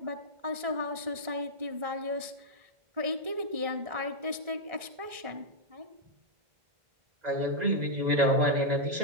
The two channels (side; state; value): left; late; 1.4 ms